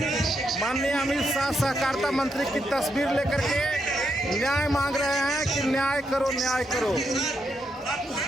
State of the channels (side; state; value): both; normal; correlation 0.80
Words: माननीय अमित शाह सहकारिता मंत्री की तस्वीर लेकर के न्याय मांग रहे हैं कि न्याय करो, न्याय करो।